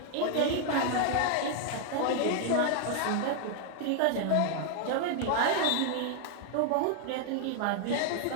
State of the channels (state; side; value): different; both; correlation 0.00